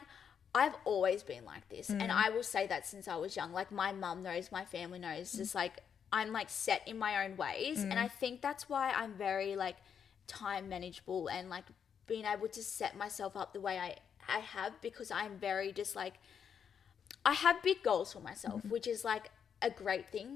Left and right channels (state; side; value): quieter; right; 7.6 dB